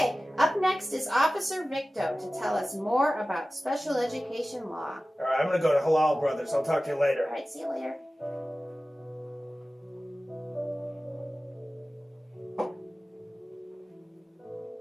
up next is Officer Victo to tell us more about special education law. All right, I'm going to go to Halal Brothers. I'll talk to you later. All right, see you later.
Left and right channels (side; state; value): both; normal; correlation 0.96